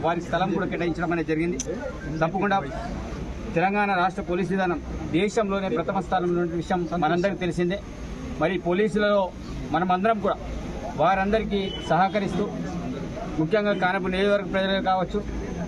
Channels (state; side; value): identical; both; correlation 1.00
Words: వారికి స్థలం కూడా కేటాయించడం అనేది జరిగింది. తప్పకుండా తెలంగాణ రాష్ట్ర పోలీసు విధానం దేశంలోనే ప్రథమ స్థానంలో ఉన్న విషయం మనందరికీ తెలిసిందే. మరి పోలీసులలో మనమందరం కూడా వారందరికీ సహకరిస్తూ ముఖ్యంగా ఖానాపూర్ నియోజకవర్గ ప్రజలే కావచ్చు,